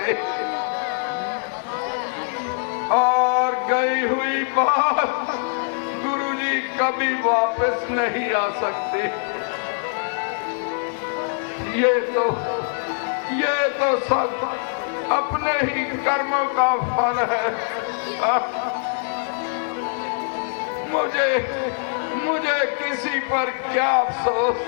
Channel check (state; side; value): silent; right; digital silence